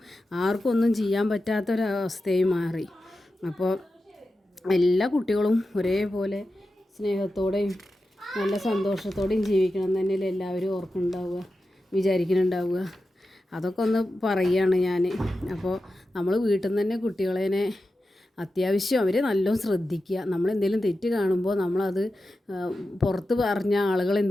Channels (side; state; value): both; normal; correlation 0.92